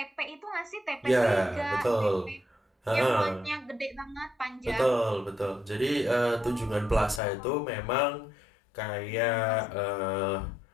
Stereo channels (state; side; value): drops out; right; at 7.2 s